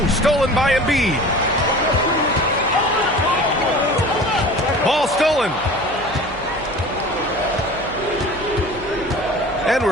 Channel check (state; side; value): noise; right; hum, 18 dB below the sound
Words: stolen by Embiid. Ball stolen. And